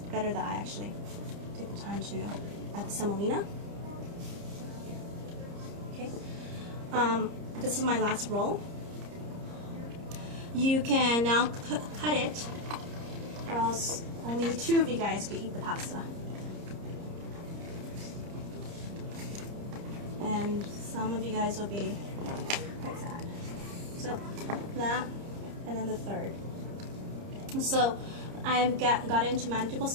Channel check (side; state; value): left; late; 30 ms